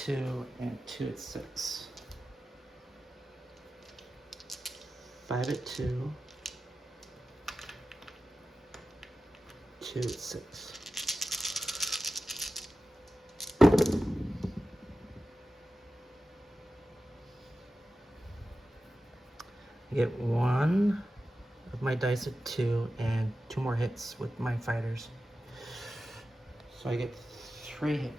and 2 at 6. 5 at 2. 2 at 6. I get 1 of my dice at 2 and 2 more hits with my fighters. So I get 3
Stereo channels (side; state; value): both; normal; correlation 0.93